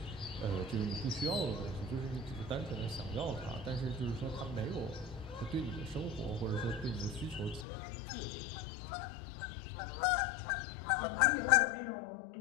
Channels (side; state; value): right; drops out; at 7.7 s